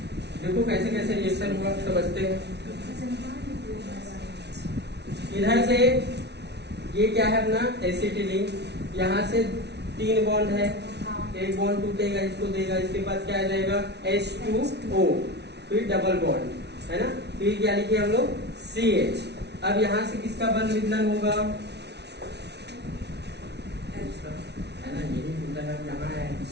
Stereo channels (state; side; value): late; left; 0.50 ms